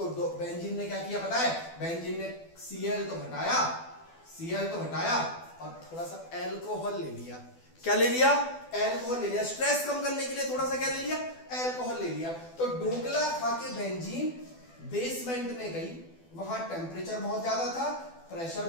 बेंजीन ने क्या किया पता है, बेंजीन ने Cl तो हटाया और थोड़ा सा एल्कोहल ले लिया। क्या ले लिया, एल्कोहल ले लिया, स्ट्रेस कम करने के लिए थोड़ा सा क्या ले लिया, एल्कोहल ले लिया। तो ढोकला खाके बेंजीन बेसमेंट में गई, वहां टेम्परेचर बहुत ज्यादा था, प्रेशर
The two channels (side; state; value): right; late; 12 ms